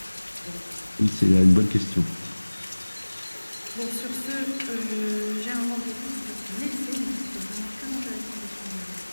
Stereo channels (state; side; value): inverted; both; correlation -1.00